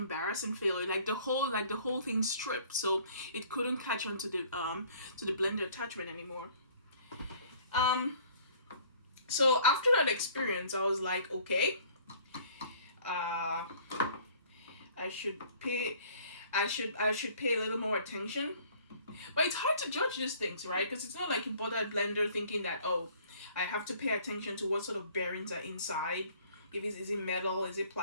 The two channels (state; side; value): inverted; both; correlation -0.54